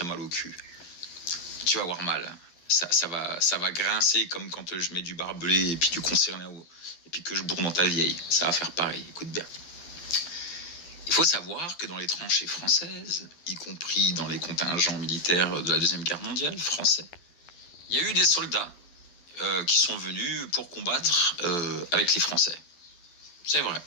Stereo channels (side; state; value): right; late; 12 ms